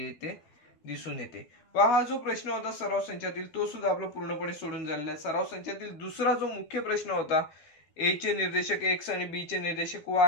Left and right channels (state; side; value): late; right; 12 ms